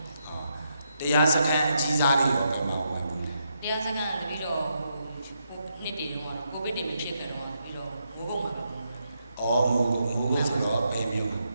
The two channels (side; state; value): both; inverted; correlation -0.80